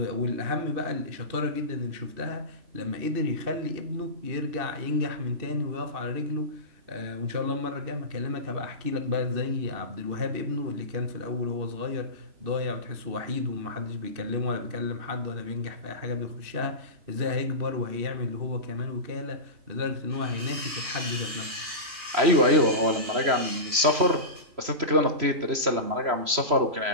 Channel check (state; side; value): late; left; 3.0 ms